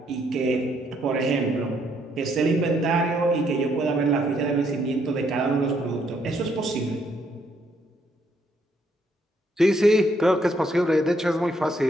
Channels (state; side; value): normal; both; correlation 0.72